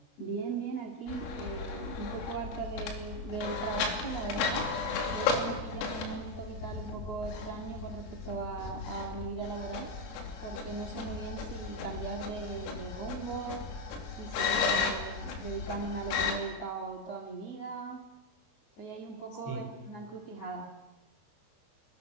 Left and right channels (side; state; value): right; late; 23 ms